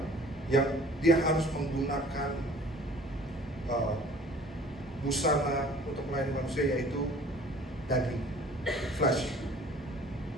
yang dia harus menggunakan busana untuk melayani manusia, yaitu daging, flesh.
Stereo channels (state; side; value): normal; both; correlation 0.50